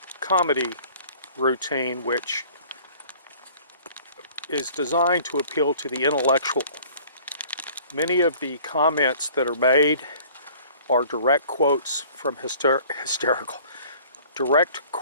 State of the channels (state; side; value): inverted; both; correlation -0.50